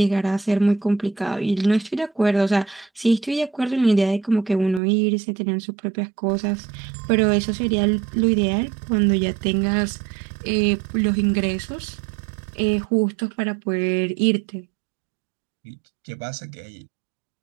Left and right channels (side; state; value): left; drops out; at 4.8 s